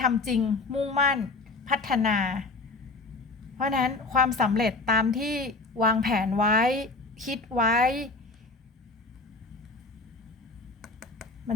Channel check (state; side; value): quieter; right; 3.3 dB